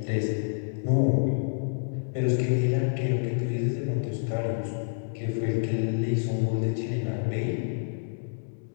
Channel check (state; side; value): silent; right; digital silence